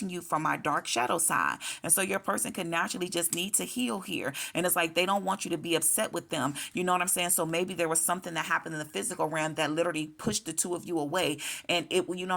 you from my dark shadow side. And so your person can naturally just need to heal here. And it's like they don't want you to be upset with them. You know what I'm saying? So maybe there was something that happened in the physical realm that literally pushed the two of you away, and it, you know what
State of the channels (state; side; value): identical; both; correlation 1.00